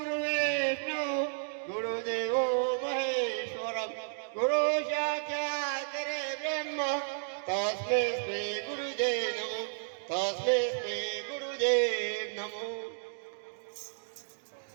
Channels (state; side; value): silent; left; digital silence